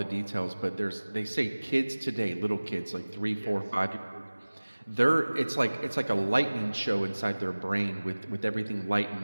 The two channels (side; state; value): both; inverted; correlation -1.00